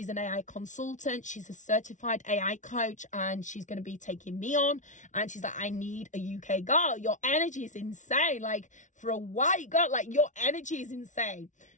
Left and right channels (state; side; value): late; right; 0.36 ms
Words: an AI consultant. She's a certified AI coach, and she's going to be taking me on. And she's like, I need a UK girl. Your energy is insane. Like, for a white girl, like, your energy is insane.